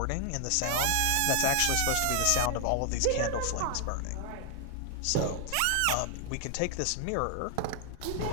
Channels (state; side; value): different; both; correlation 0.00